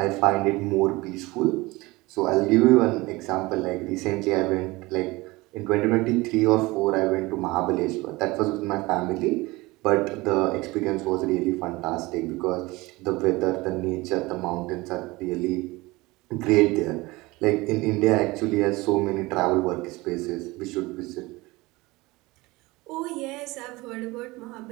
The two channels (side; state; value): left; quieter; 21.8 dB